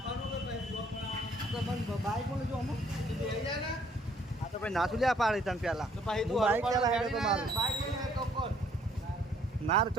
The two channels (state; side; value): normal; both; correlation 0.63